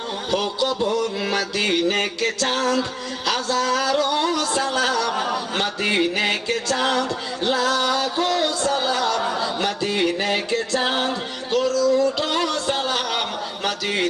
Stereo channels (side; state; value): both; identical; correlation 1.00